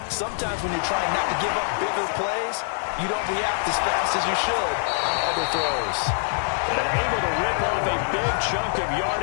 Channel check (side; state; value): right; silent; digital silence